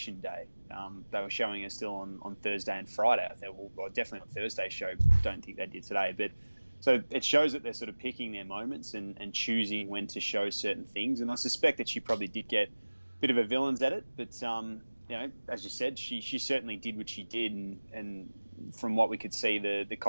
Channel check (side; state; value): both; inverted; correlation -1.00